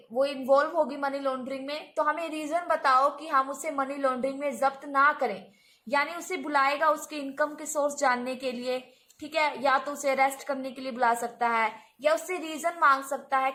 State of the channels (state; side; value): identical; both; correlation 1.00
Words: इन्वॉल्व होगी मनी लॉन्ड्रिंग में, तो हमें रीजन बताओ कि हम उसे मनी लॉन्ड्रिंग में जब्त ना करें। यानी उसे बुलाएगा उसके इनकम के सोर्स जानने के लिए। ठीक है, या तो उसे अरेस्ट करने के लिए बुला सकता है या उससे रीजन मांग सकता है